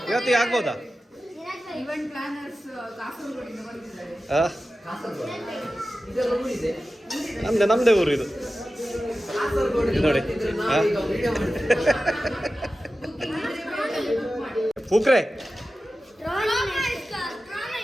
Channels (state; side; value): normal; both; correlation 0.94